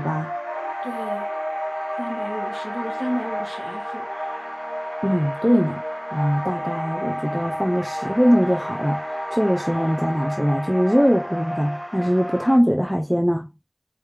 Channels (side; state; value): both; identical; correlation 1.00